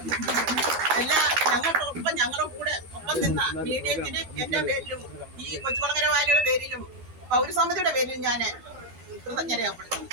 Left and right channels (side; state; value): left; late; 12 ms